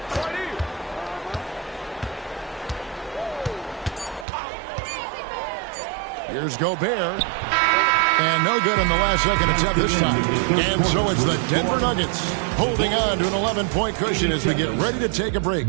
Here's Gobert. And no good in the last second attempt this time. And so it's the Denver Nuggets holding on to an 11-point cushion as we get ready to take a break.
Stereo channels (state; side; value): drops out; left; at 4.2 s